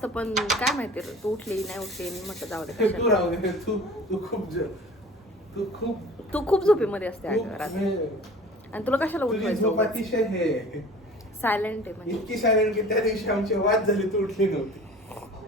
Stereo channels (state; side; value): normal; both; correlation 0.43